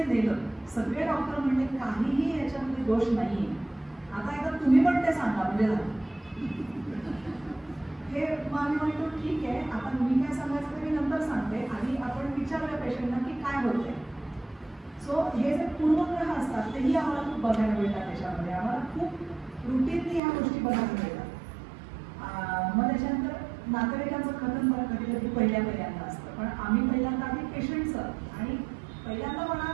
नेलं, सगळे डॉक्टर म्हणले काहीही याच्यामध्ये दोष नाही, आता एकदा तुम्ही पण ते सांगा म्हणजे झालं. हे मग आम्ही म्हणतो ठीक आहे, आता मी काय सांगायचं ते मी नंतर सांगते, आधी आपण विचारूया पेशंटला की काय होतंय. सो हे जे पूर्वग्रह असतात तेही आम्हाला खूप बघायला मिळतात त्याच्यामध्ये, आम्हाला खूप रुटीनली ह्या गोष्टी बघायला मिळतात. मग त्याच्यानंतर नातेवाईकांचं कथन पण कधी कधी पहिल्यांदा असतं, पण आम्ही पहिल्यांदा आधी पेशंटचं, आणि पहिल्यांदा म्हणा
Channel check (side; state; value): left; drops out; at 20.2 s